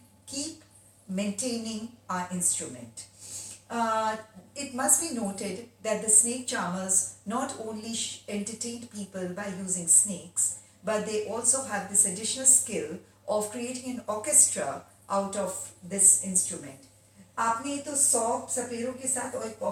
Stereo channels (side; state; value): both; identical; correlation 1.00